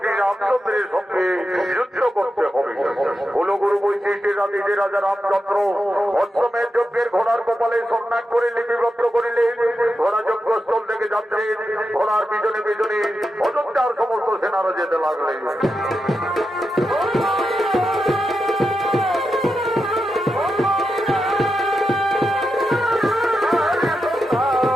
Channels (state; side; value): normal; both; correlation 0.88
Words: শ্রী রামচন্দ্রের সঙ্গে যুদ্ধ করতে হবে। কুলগুরু বৈশিষ্ট্যের আদেশে রাজা রামচন্দ্র অষ্টমের যজ্ঞের ঘোড়ার কপালে সন্ন্যাস করে লিপিবদ্ধ করিলেন। ঘোড়া যজ্ঞস্থল থেকে যাচ্ছে। ঘোড়ার পিছনে পিছনে অযোধ্যার সমস্ত সেনারা যেতে লাগলেন।